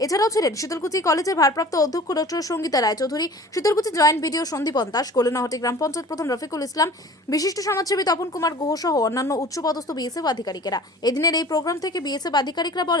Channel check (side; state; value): both; normal; correlation 0.44